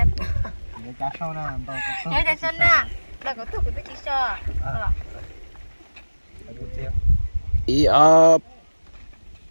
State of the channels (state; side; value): inverted; both; correlation -1.00